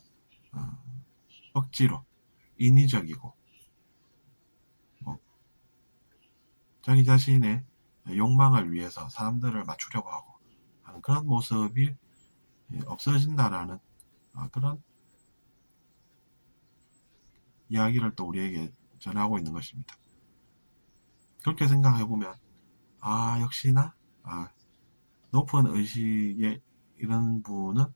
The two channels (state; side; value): inverted; both; correlation -1.00